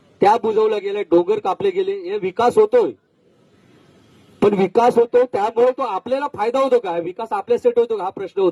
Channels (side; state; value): both; identical; correlation 1.00